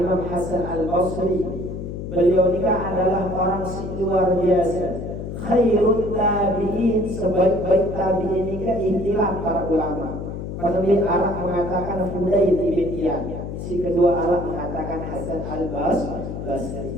Hasan Al-Basri. Beliau ini adalah orang luar biasa. Khairul tabi'in, sebaik-baik tabi'in ini kan istilah para ulama. Penulis Arab mengatakan Fudail ibn Iyad, si kedua Arab mengatakan Hasan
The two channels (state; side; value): noise; left; hum, 7 dB below the sound